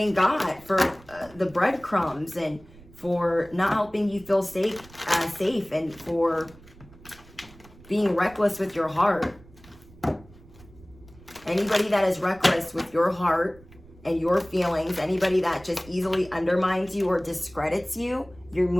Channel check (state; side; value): noise; right; rumble, 23 dB below the sound